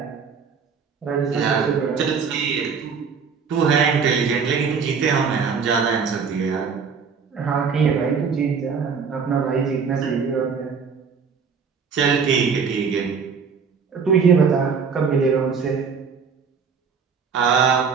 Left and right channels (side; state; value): left; quieter; 5.9 dB